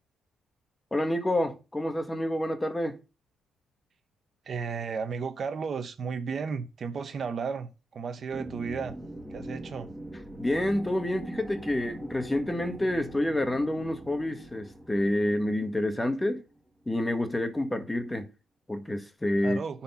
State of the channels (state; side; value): normal; both; correlation 0.92